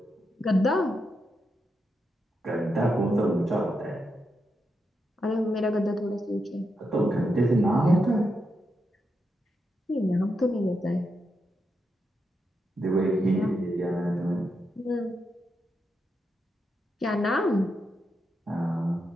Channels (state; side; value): normal; both; correlation 0.84